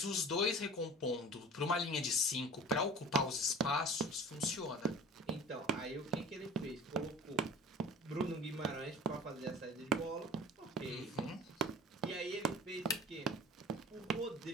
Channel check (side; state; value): both; normal; correlation 0.41